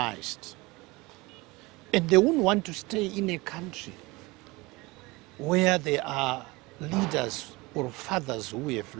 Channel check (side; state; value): left; quieter; 23.3 dB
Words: And they won't want to stay in a country where there are leaders or fathers who have